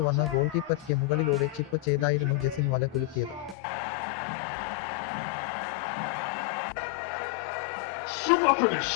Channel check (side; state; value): right; drops out; at 3.6 s